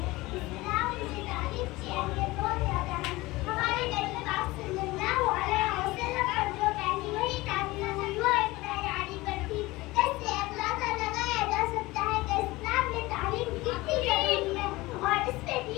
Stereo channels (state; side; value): quieter; right; 20.3 dB